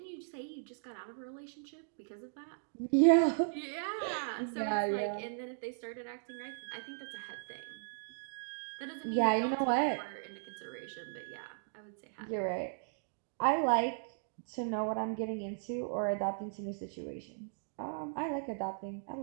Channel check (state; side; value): silent; left; digital silence